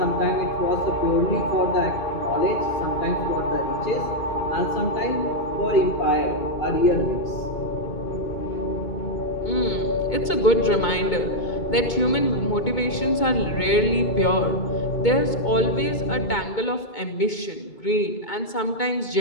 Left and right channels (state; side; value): late; right; 2.2 ms